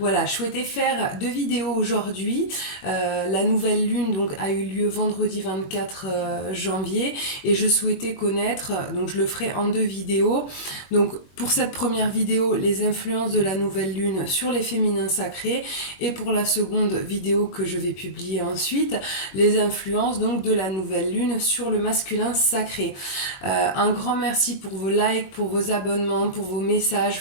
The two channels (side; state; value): right; late; 21 ms